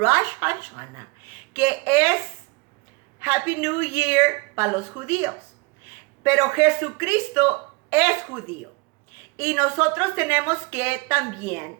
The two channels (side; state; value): left; quieter; 26.6 dB